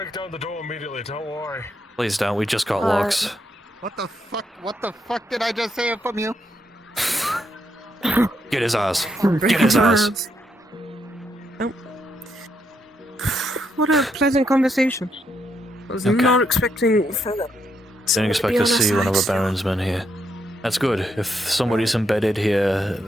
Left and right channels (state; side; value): normal; both; correlation 0.78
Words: down the door immediately, don't worry. Please don't, we just got locks. What the fuck? What the fuck did I just hear from you? Get his ass. Get his ass. Oh. What a pleasant conversation. I was not expecting further. Didn't expect to see one of the Baron's men here. That's good. If somebody's embedded here,